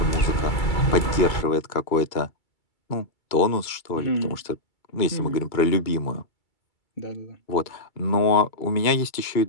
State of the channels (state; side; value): late; right; 2.3 ms